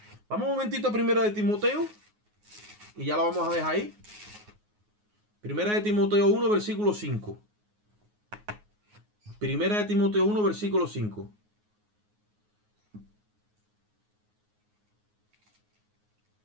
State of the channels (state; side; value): late; left; 9.5 ms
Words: Vamos un momentito a Primera de Timoteo. Y ya lo vamos a dejar ahí. Primera de Timoteo 1, versículo 5. Primera de Timoteo 1, versículo 5.